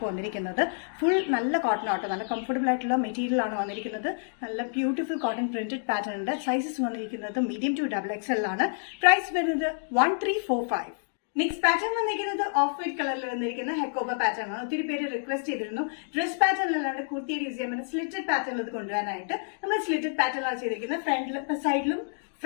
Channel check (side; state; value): right; silent; digital silence